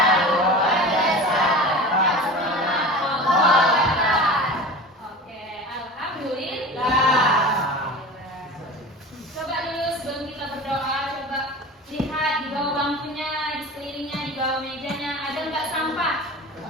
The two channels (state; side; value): normal; both; correlation 0.33